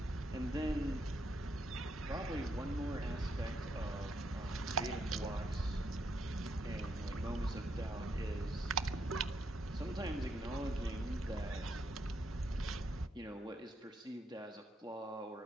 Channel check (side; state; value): both; normal; correlation 0.77